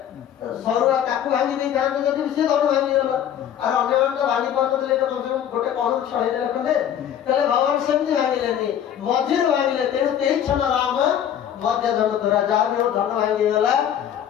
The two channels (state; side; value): quieter; right; 9.8 dB